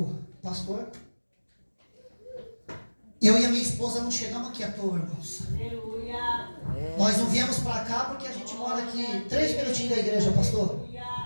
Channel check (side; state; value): both; inverted; correlation -1.00